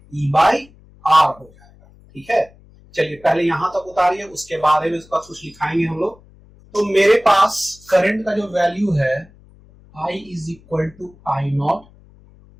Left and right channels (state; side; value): noise; left; hum, 26 dB below the sound